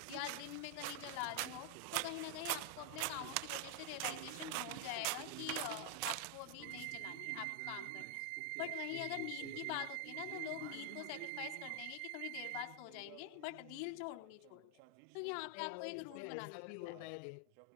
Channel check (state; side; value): different; both; correlation 0.00